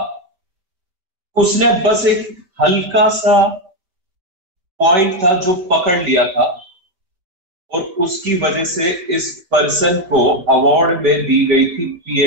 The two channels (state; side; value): late; left; 5.3 ms